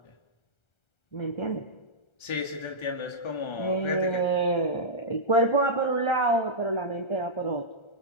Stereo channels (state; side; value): late; right; 1.3 ms